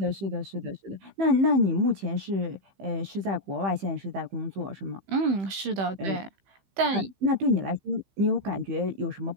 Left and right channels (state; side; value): late; left; 15 ms